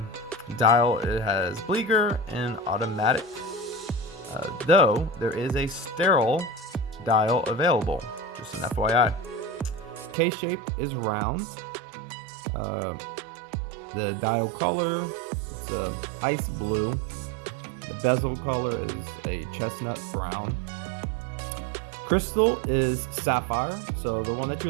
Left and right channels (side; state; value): left; drops out; at 10.2 s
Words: dial it has Bliger and automatic, though there is a sterile dial available, just an FYI. Case shape is round. The dial color, it's a ice blue. The bezel color is a chestnut brown. Crystal is sapphire. So the one that